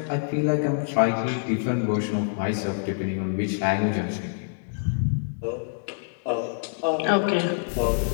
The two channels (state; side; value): silent; right; 61 dB below the other